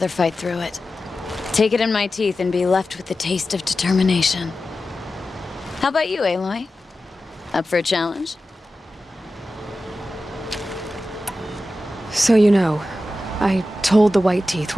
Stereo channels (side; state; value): both; normal; correlation 0.93